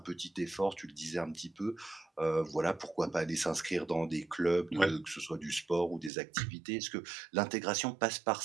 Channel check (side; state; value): left; drops out; at 6.1 s